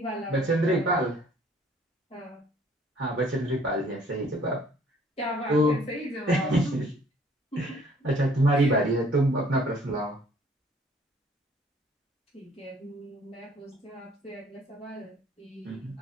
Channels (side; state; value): both; normal; correlation 0.58